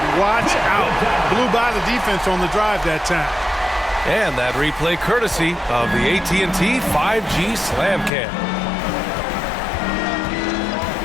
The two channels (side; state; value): right; drops out; at 8.1 s